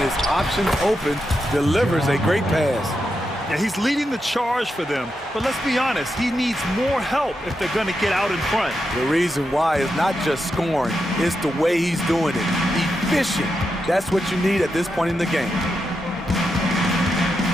his options open, delivers a great pass. Yeah, he's leading the charge for them, but let's be honest, he needs more help if they're going to get out in front. The reason why is not just scoring, it's the way he's doing it. Efficient. That's what you need at this point in the game.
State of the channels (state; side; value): normal; both; correlation 0.86